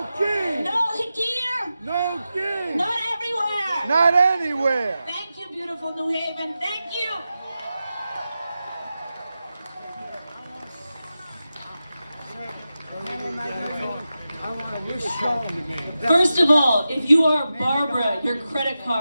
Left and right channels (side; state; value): both; inverted; correlation -0.92